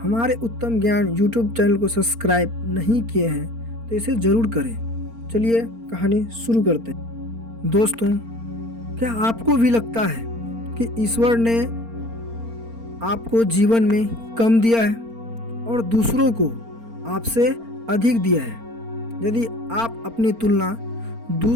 हमारे उत्तम ज्ञान यूट्यूब चैनल को सब्सक्राइब नहीं किए हैं तो इसे ज़रूर करें। चलिए कहानी शुरू करते हैं। दोस्तों, क्या आपको भी लगता है कि ईश्वर ने आपको जीवन में कम दिया है और दूसरों को आपसे अधिक दिया है? यदि आप अपनी तुलना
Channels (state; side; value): late; left; 4.4 ms